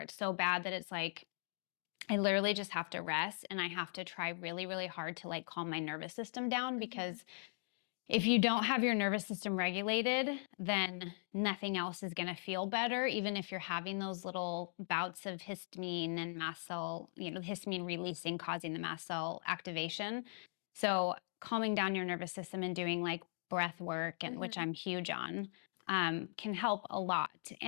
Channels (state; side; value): silent; right; digital silence